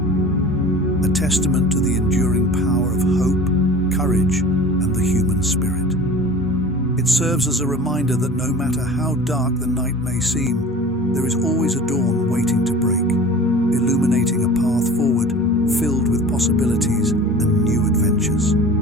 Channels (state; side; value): normal; both; correlation 0.40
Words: A testament to the enduring power of hope, courage, and the human spirit. It serves as a reminder that no matter how dark the night may seem, there is always a dawn waiting to break, illuminating a path forward filled with possibilities and new adventures.